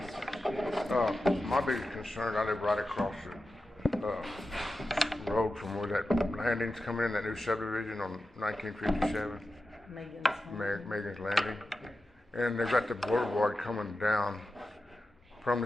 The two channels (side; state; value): both; normal; correlation 0.92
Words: My biggest concern, I live right across the road from where that landing's coming in, that new subdivision on 1957, Megan's Landing. And they've got the boulevard coming down from